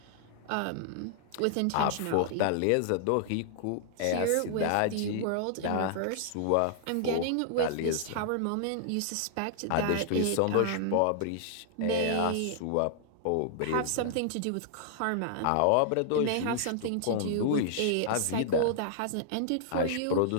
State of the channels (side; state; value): both; different; correlation -0.01